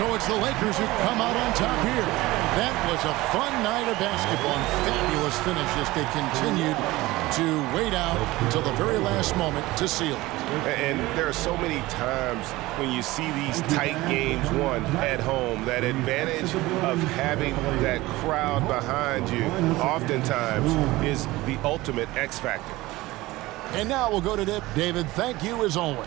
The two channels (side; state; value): left; quieter; 19.2 dB